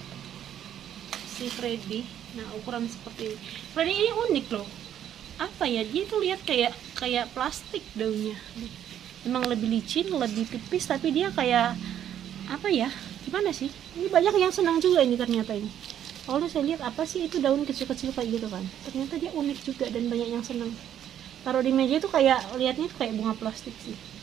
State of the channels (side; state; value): left; quieter; 10.3 dB